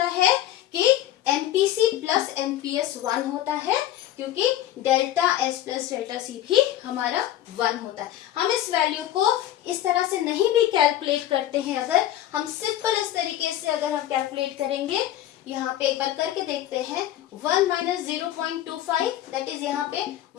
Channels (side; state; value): right; quieter; 12.8 dB